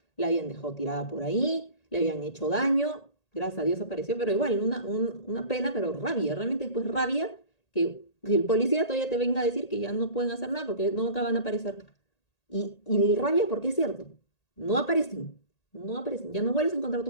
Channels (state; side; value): late; right; 1.8 ms